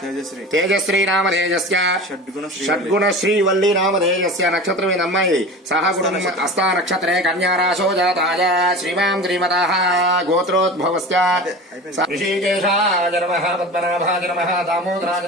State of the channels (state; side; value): normal; both; correlation 0.33